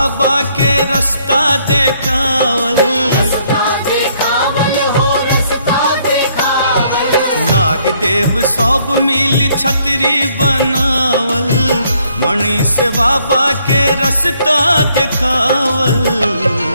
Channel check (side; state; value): both; inverted; correlation -0.68